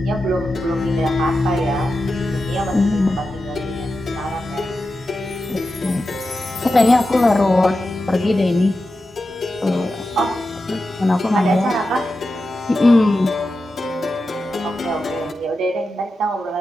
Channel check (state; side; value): normal; both; correlation 0.91